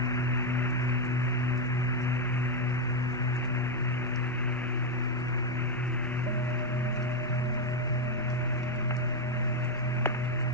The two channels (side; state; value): both; normal; correlation 0.04